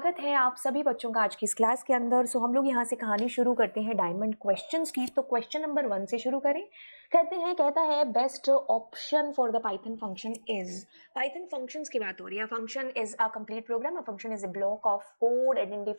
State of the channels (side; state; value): both; inverted; correlation -1.00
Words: है आप सभी बच्चों का आज की इस क्लास के अंदर। हम लोग यहाँ से कहानी शुरू करते हैं डायमंड क्वेश्चंस की। तो क्वेश्चन नंबर 1 से शुरू करें। कहता है best option for the Python function is. Python functions की बात हो रही है। Function is a complete program, a function is a block of code